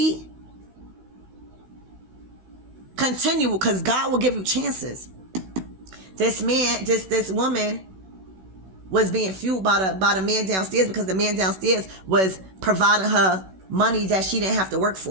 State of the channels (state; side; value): late; left; 16 ms